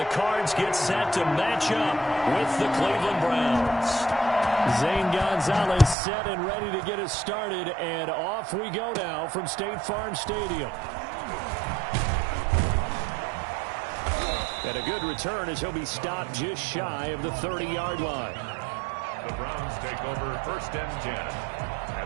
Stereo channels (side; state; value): left; drops out; at 6.0 s